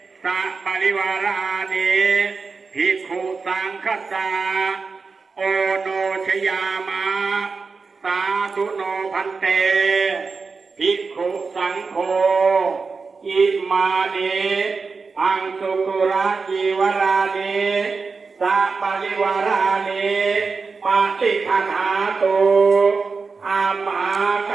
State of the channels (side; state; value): left; quieter; 4.6 dB